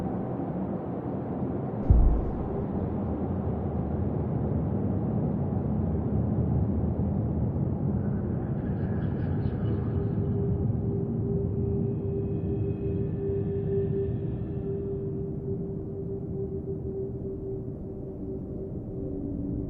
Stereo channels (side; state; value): both; identical; correlation 1.00